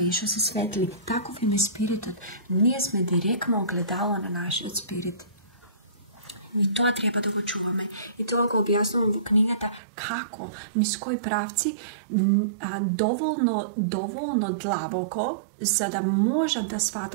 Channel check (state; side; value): drops out; left; at 9.8 s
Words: što se svetli. Takov im je spiritot. Nije sme direktno ogledalo na naš spirit. I to treba da go čuvame. I to ga objasnujem u knjigata kako, iz koji pravci, dovoljno dlaboko, za da može da